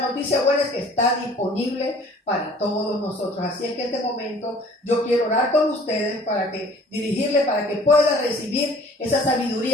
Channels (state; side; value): normal; both; correlation 0.51